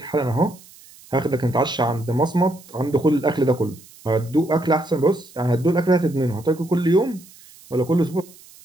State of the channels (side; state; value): right; noise; hiss, 23 dB below the sound